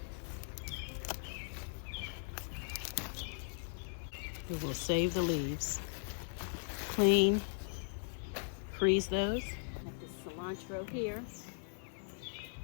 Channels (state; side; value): silent; right; digital silence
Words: So we'll save the leaves. Clean, freeze those. Got this cilantro here.